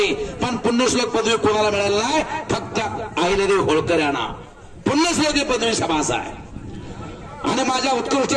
पण पुण्यश्लोक पदवी कोणाला मिळाली नाही, फक्त अहिल्यादेवी होळकर यांना पुण्यश्लोक ही पदवी शाबास आहे. आणि माझ्या उत्कृष्ट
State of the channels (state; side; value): identical; both; correlation 1.00